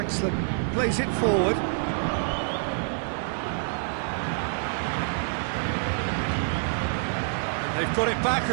plays it forward. And they've got it back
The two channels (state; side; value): silent; left; 55 dB below the other